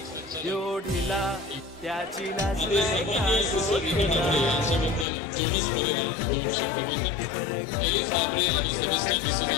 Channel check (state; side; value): drops out; right; at 5.1 s